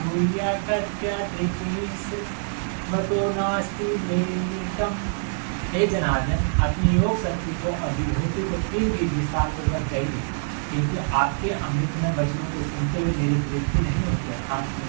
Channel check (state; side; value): silent; left; digital silence